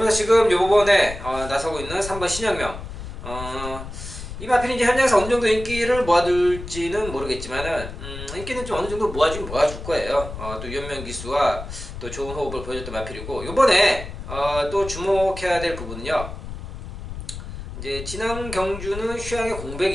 지금 요번에 나서고 있는 3번 신영명 이 마필이 이제 현장에서 어느 정도 인기를 모아둘지는 모르겠지만은 인기는 좀 어느 정도 모아줄 거예요. 또 유현명 기수와 또 좋은 호흡을 보여줬던 마필이고 요번에 또 주목해야 될 부분은요. 이제 지난 경주는 휴양에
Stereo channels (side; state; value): left; noise; rumble, 10 dB below the sound